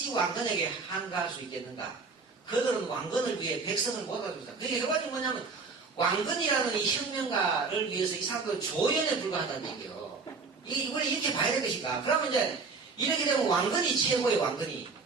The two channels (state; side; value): quieter; left; 4.5 dB